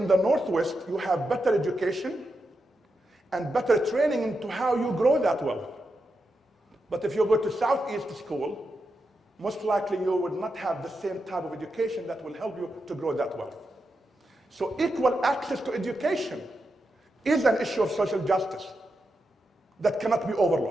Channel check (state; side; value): normal; both; correlation 0.87